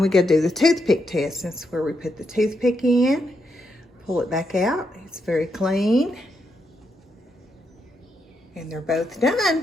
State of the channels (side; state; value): both; normal; correlation 0.81